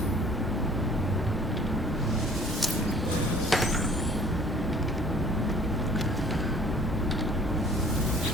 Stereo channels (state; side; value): normal; both; correlation 0.53